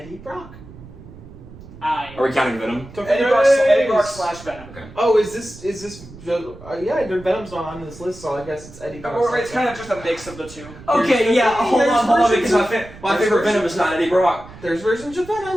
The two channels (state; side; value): noise; right; rumble, 18 dB below the sound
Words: Brock. Are we counting Venom? Eddie Brock slash Venom. Okay. Oh, is this? Yeah, Venom's not on this list, so I guess it's Eddie Brock. Or it's kind of just a mix of the two. Okay, yeah, hold on, because my favorite Venom is not Eddie Brock. There's versions of